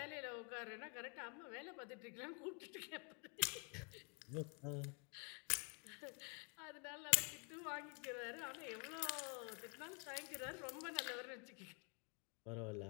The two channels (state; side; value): quieter; right; 32.4 dB